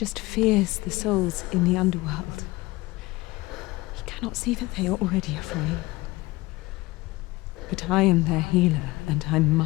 fears the souls in the underworld. He cannot see that they are already afraid. But I am their healer, and I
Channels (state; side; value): quieter; right; 20.5 dB